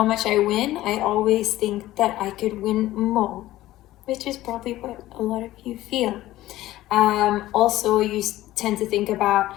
much I win, I always think that I could win more, which is probably what a lot of you feel. Also, you tend to think about,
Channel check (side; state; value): right; quieter; 15.6 dB